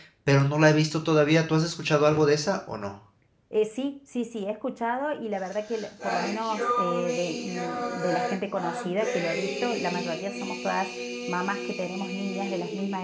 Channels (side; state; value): both; identical; correlation 1.00